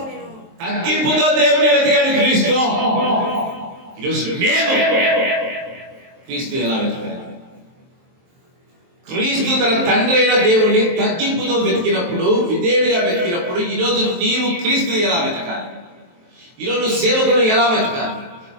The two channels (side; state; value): left; late; 23 ms